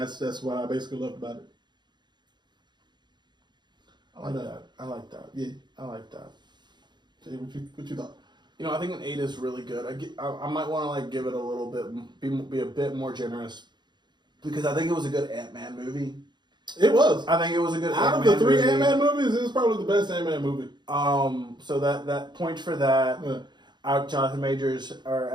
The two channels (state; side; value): late; left; 0.21 ms